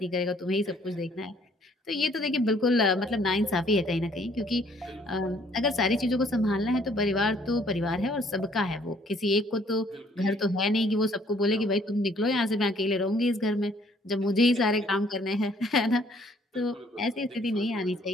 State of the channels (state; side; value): normal; both; correlation 0.62